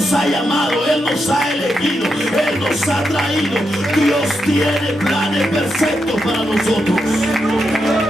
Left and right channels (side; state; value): both; normal; correlation 0.84